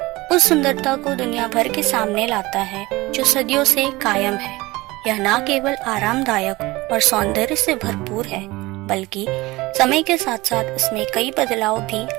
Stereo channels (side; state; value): left; quieter; 20.9 dB